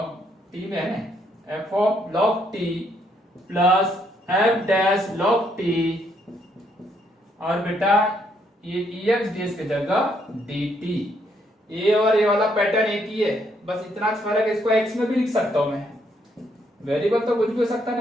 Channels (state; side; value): normal; both; correlation 0.72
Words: t में है ना, f of log t plus f dash log t, और बेटा ये ex dx की जगह dt। ये और ये वाला पैटर्न एक ही है, बस इतना फर्क है। इसको x में भी लिख सकता हूं मैं, वेरिएबल तो कुछ भी हो सकता है